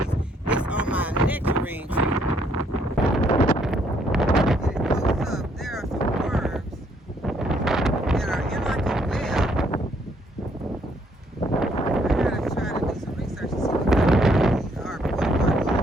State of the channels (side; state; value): both; normal; correlation 0.69